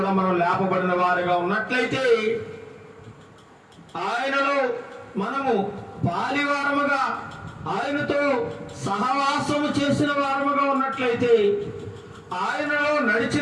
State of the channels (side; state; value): both; identical; correlation 1.00